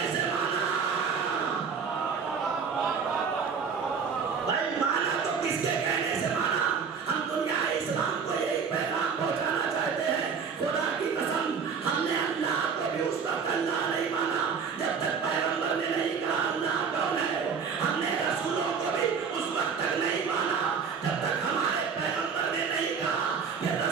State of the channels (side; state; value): left; quieter; 6.1 dB